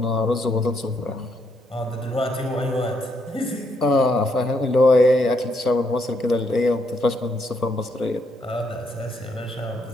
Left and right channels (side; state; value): both; normal; correlation 0.75